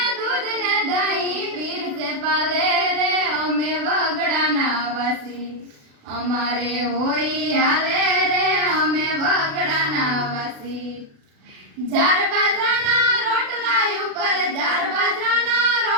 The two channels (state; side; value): late; left; 36 ms